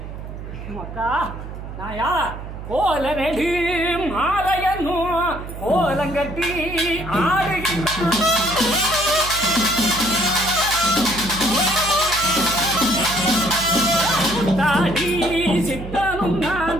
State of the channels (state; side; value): noise; right; hum, 10 dB below the sound